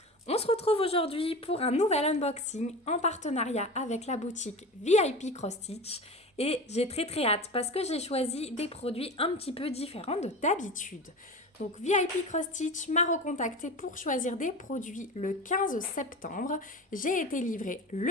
On se retrouve aujourd'hui pour un nouvel unboxing en partenariat avec la boutique VIP Cross Stitch et j'ai très hâte parce que j'ai choisi des produits un petit peu différents de d'habitude. Donc VIP Cross Stitch m'a recontacté pour choisir des produits le 15 septembre. J'ai été livrée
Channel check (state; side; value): normal; both; correlation 0.31